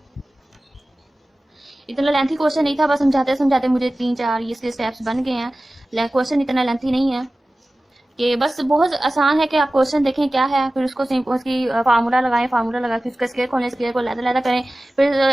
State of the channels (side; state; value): both; normal; correlation 0.96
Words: इतना लेंथी क्वेश्चन नहीं था, बस समझाते समझाते मुझे 3-4 इसके स्टेप्स बन गए हैं। क्वेश्चन इतना लेंथी नहीं है, कि बस बहुत आसान है कि आप क्वेश्चन देखें क्या है, फिर उसको उसकी फार्मूला लगाएं, फार्मूला लगा के उसका स्क्वायर खोलें, स्क्वायर को लैदा करें, फिर